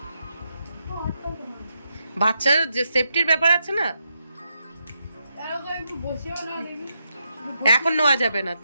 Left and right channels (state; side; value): inverted; both; correlation -0.83